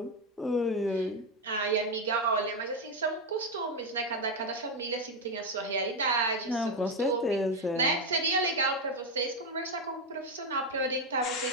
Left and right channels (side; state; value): both; normal; correlation 0.08